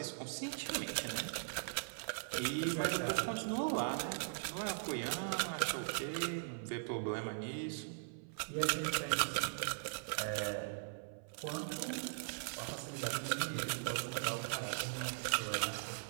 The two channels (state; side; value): silent; left; 51 dB below the other